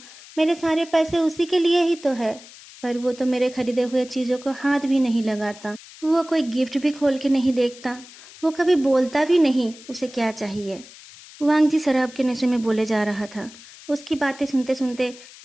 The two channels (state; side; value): noise; left; hiss, 19 dB below the sound